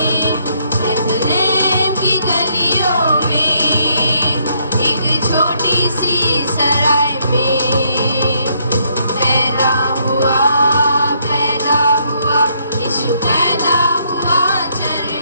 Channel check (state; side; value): inverted; both; correlation -0.71